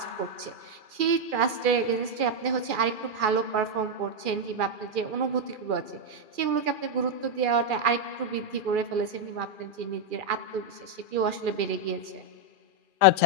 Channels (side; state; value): left; late; 2.4 ms